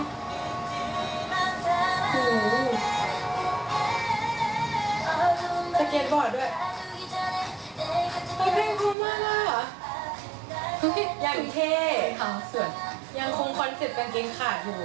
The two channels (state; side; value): drops out; left; at 9.0 s